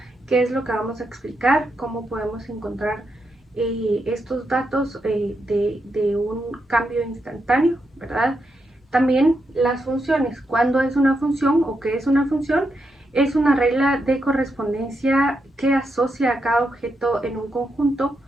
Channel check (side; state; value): both; normal; correlation 0.83